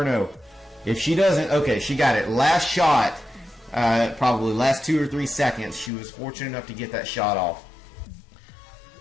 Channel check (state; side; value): drops out; right; at 5.9 s